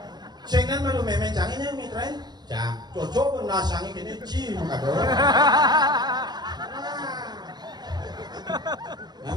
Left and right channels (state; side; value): late; left; 0.20 ms